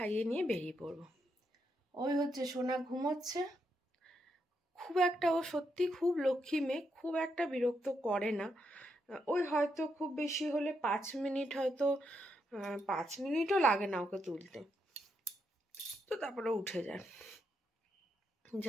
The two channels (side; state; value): both; normal; correlation 0.80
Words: নিয়ে বেরিয়ে পড়বো। ওই হচ্ছে সোনা ঘুমোচ্ছে। খুব একটা, ও সত্যি খুব লক্ষ্মী মেয়ে, খুব একটা বিরক্ত করে না। ওই হয়তো খুব বেশি হলে 5 মিনিট, হয়তো 5 মিনিটও লাগে না ওকে তুলতে, তো তারপরে উঠে যায়।